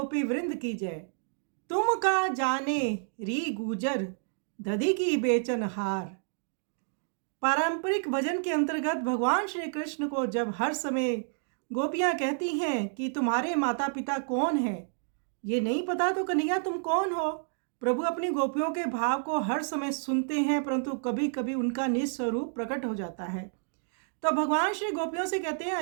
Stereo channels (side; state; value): left; silent; digital silence